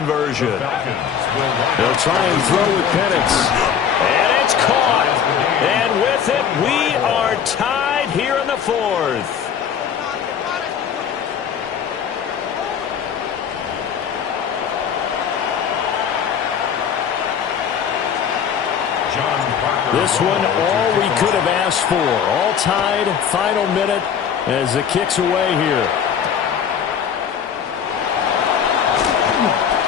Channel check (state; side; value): quieter; right; 7.9 dB